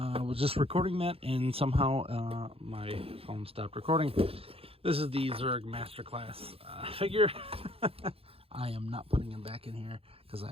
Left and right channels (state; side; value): late; left; 0.28 ms